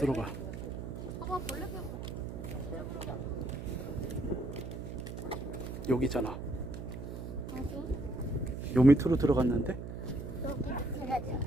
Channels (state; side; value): noise; right; hum, 7 dB below the sound